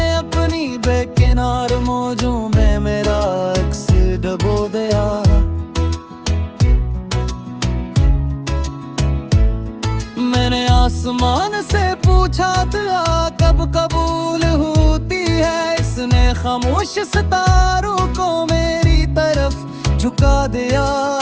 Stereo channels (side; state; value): both; identical; correlation 1.00